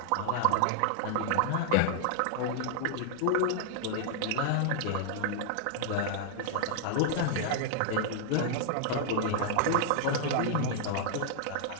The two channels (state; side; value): different; both; correlation -0.01